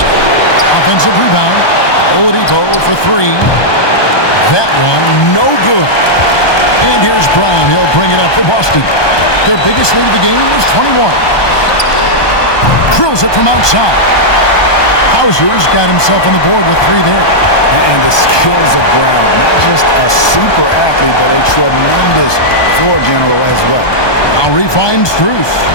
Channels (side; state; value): right; late; 1.2 ms